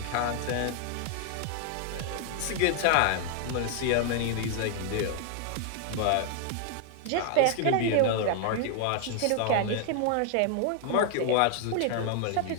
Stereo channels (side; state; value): both; different; correlation 0.00